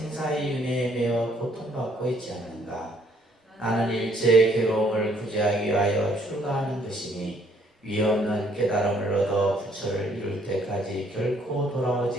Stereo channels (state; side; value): normal; both; correlation 0.64